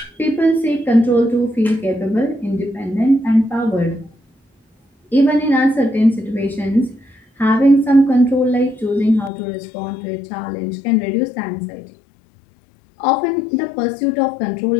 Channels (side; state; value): right; drops out; at 9.3 s